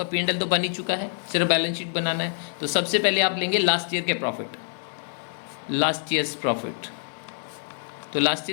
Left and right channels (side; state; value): right; silent; digital silence